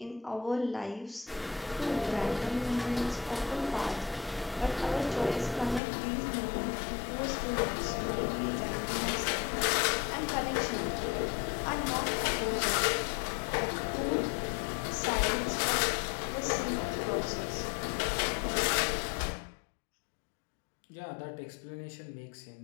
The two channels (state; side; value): drops out; right; at 5.8 s